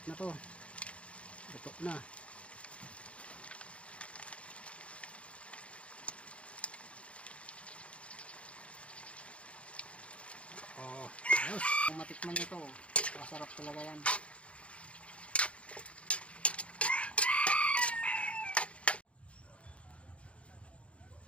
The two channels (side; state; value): right; late; 0.061 ms